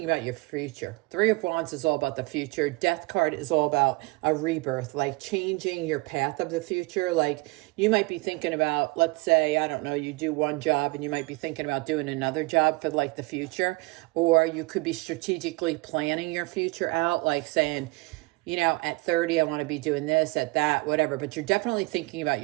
about your future. Three of Wands is all about the future. Death card is all about a rebirth, like changing your path of the future. Like you might be thinking about, let's say, I don't know, you do one job and you might be thinking about doing another job for like the future. Or you could be strategically planning your future out, like saying, you know, at 30, I want to be doing this, at that, whatever. But you're definitely thinking about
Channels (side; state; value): left; quieter; 25.1 dB